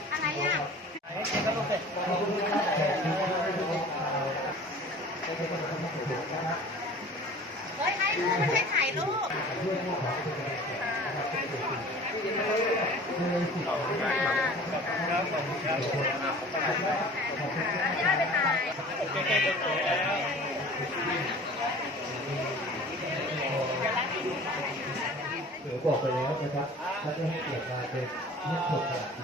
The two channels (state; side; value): normal; both; correlation 0.44